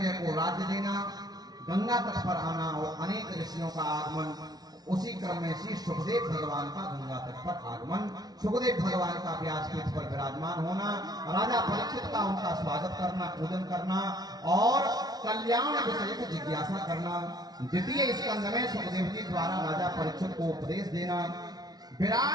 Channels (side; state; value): left; late; 0.19 ms